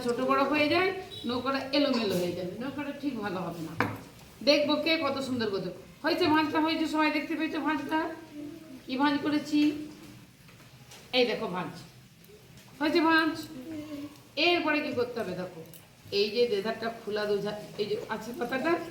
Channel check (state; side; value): identical; both; correlation 1.00